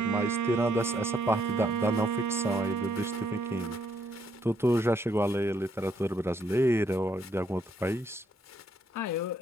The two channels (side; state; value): both; normal; correlation 0.72